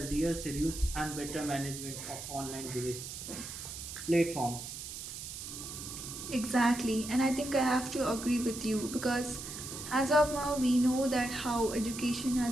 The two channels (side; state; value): right; noise; hiss, 9 dB below the sound